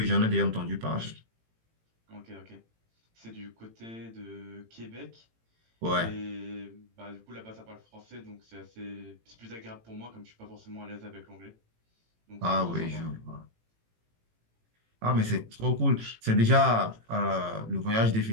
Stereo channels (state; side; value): late; left; 18 ms